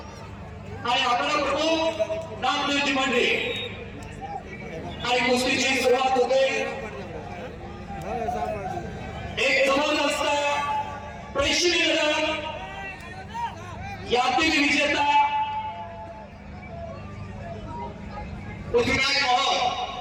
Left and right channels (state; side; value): identical; both; correlation 1.00